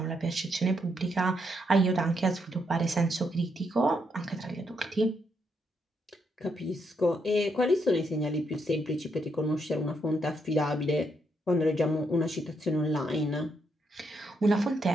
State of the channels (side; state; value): both; normal; correlation 0.78